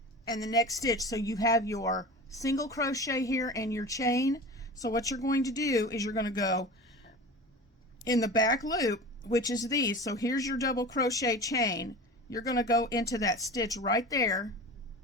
and the next stitch. So you have your single crochet here and your chain. So what you're going to do is you're going to go in the back loop, which is these. So here's your double crochet chain. You're going to go into that stitch right there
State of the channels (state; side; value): normal; both; correlation 0.33